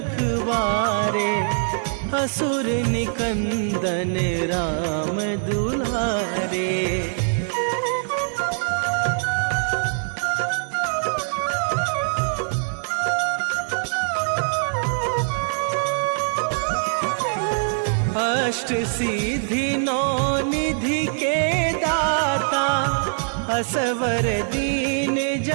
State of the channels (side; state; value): left; silent; digital silence